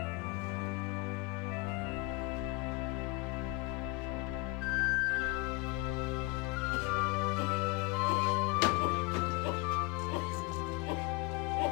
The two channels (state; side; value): quieter; right; 22.2 dB